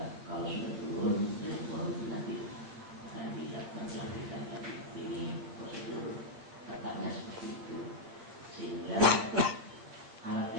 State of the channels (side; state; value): left; late; 8.9 ms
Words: kalau sudah turun dari gubernur nanti akan dilakukan pelantikan lagi. Ini prosedur tetapnya seperti itu, sehingga alat